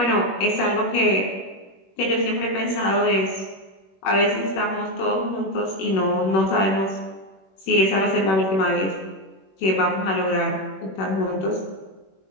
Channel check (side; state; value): right; late; 21 ms